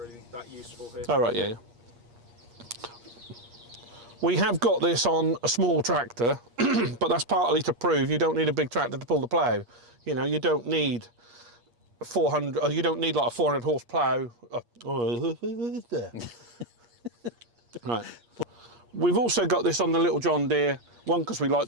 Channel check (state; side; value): late; left; 8.5 ms